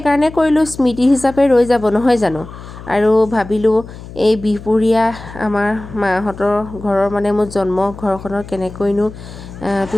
কৰিলোঁ, স্মৃতি হিচাপে ৰৈ যাব নহয় জানো। আৰু ভাবিলোঁ এই বিহপুৰীয়া আমাৰ মাহঁতৰ ঘৰৰ মানে মোৰ জন্ম ঘৰখনৰ কেনেকৈনো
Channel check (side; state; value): left; noise; hum, 15 dB below the sound